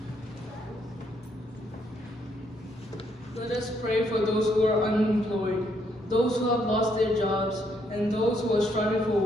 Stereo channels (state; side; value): normal; both; correlation 0.73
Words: Let us pray for those who are unemployed, those who have lost their jobs, and those who are struggling for